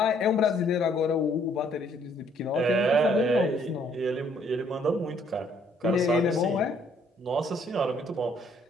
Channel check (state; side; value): normal; both; correlation 0.65